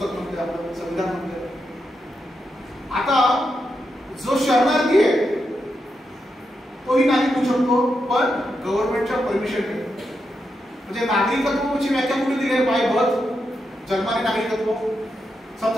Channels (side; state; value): both; normal; correlation 0.85